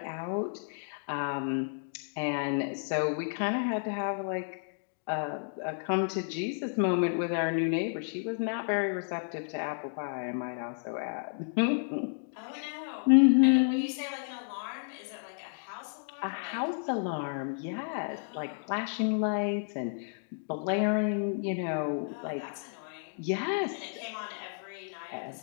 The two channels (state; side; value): silent; right; digital silence